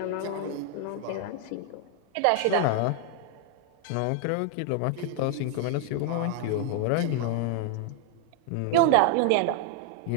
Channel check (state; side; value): different; both; correlation 0.00